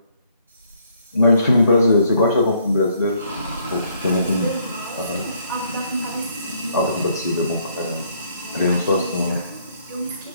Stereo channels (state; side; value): inverted; both; correlation -0.68